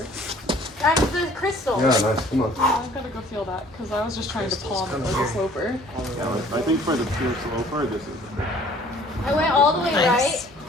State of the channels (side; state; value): both; normal; correlation 0.54